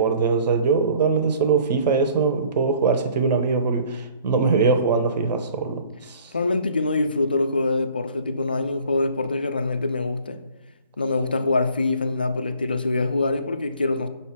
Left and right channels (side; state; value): both; inverted; correlation -0.54